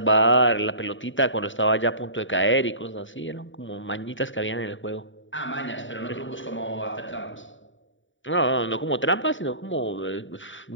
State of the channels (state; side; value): late; right; 0.55 ms